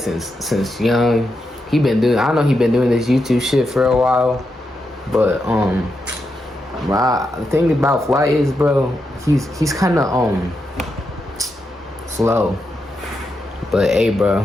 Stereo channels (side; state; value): both; normal; correlation 0.85